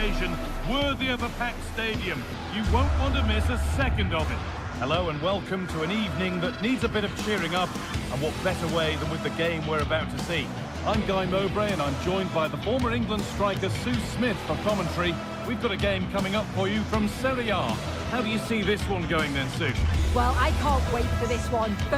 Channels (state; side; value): identical; both; correlation 1.00